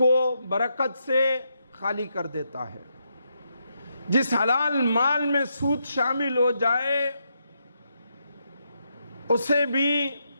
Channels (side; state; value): both; inverted; correlation -0.80